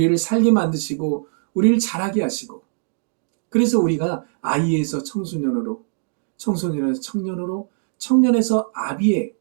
살게 만드시고 우리를 자라게 하시고, 그래서 우리가 아이에서 청소년으로, 청소년에서 청년으로, 청년에서 아비의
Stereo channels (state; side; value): silent; left; digital silence